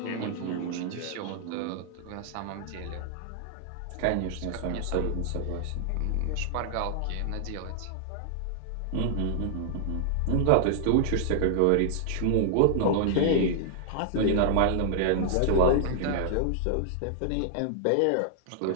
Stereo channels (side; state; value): both; different; correlation -0.01